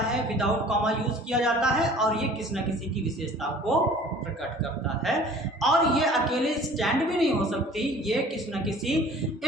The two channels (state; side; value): normal; both; correlation 0.48